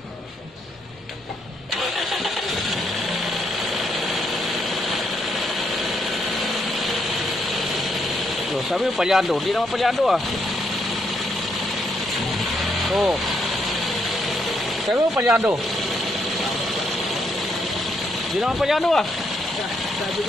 So, sabi mo palyado, hindi naman palyado ah. Oh. Sabi mo palyado. Hindi naman palyado ah.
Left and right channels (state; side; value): normal; both; correlation 0.76